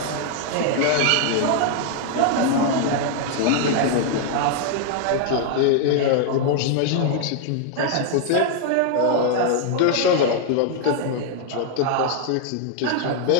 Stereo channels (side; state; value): both; different; correlation 0.00